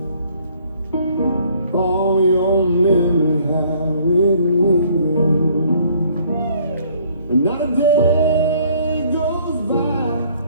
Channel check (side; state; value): both; inverted; correlation -0.60